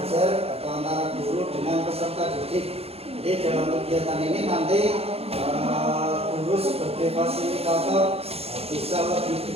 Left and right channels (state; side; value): late; left; 0.29 ms